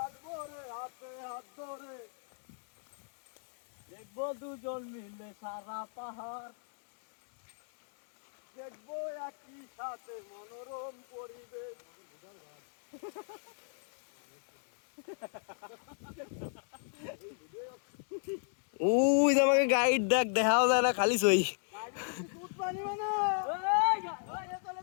দেখবো দুজন মিলে সারা পাহাড়, দেখবো একই সাথে মনোরম পরিবেশ। উই যে আমাকে গাইড দেখ, দেখাও যায় না, খালি সই।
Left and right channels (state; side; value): silent; right; digital silence